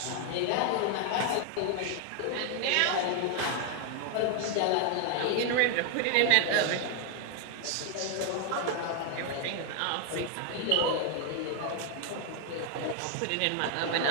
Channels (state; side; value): different; both; correlation 0.00